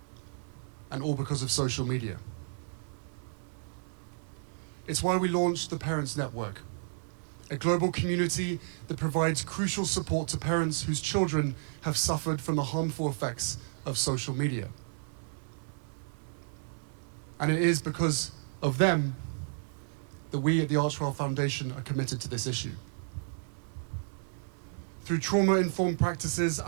and all because of social media. It's why we launched the Parents Network, a global community that provides crucial support to parents whose children have suffered from the harmful effects of social media. And it is because of them that we at the Archewell Foundation are committed to this issue. Through trauma-informed practices,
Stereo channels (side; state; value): left; silent; 56 dB below the other